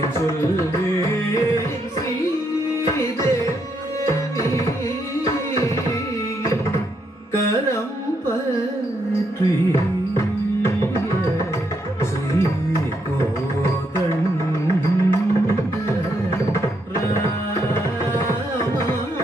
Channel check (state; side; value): normal; both; correlation 0.77